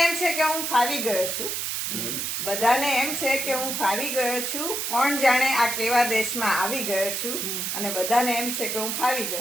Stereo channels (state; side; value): noise; right; hiss, 2 dB below the sound